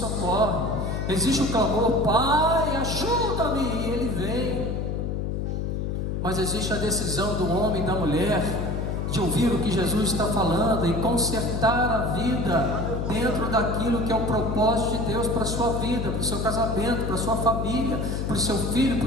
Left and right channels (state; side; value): noise; left; hum, 1 dB below the sound